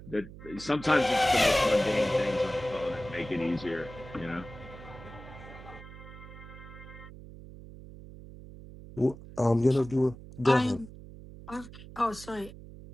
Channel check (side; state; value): right; noise; hum, 16 dB below the sound